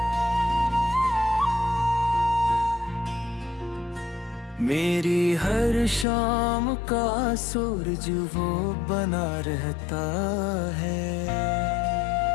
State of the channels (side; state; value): right; drops out; at 6.1 s